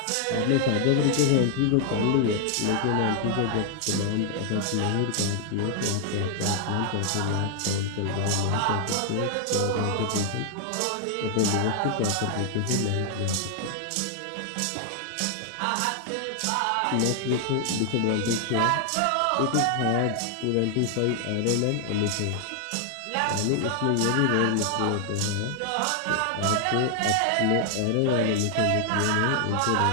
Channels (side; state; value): both; different; correlation 0.00